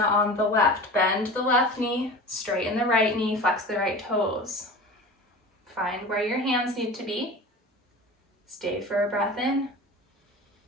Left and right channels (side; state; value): both; normal; correlation 0.35